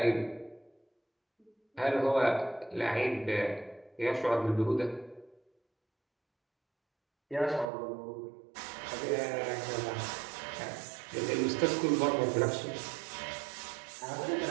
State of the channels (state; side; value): drops out; left; at 7.7 s